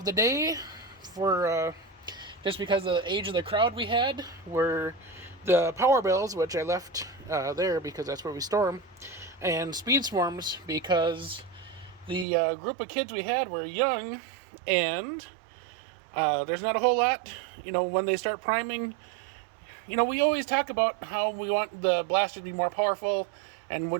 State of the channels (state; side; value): drops out; left; at 12.2 s